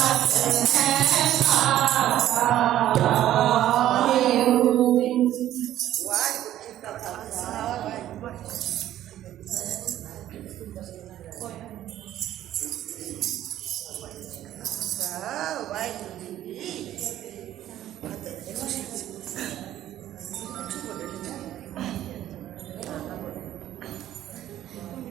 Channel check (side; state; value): left; quieter; 12.7 dB